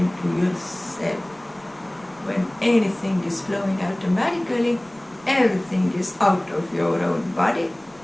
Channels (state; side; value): noise; right; rumble, 28 dB below the sound